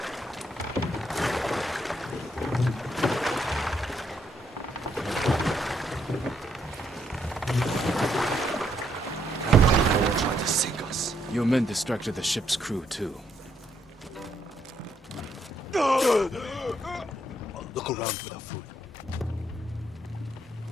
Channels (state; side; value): normal; both; correlation 0.75